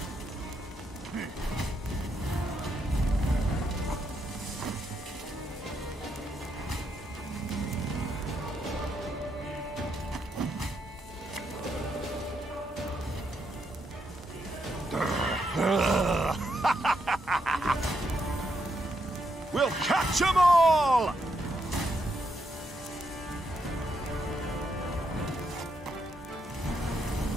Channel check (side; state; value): both; normal; correlation 0.79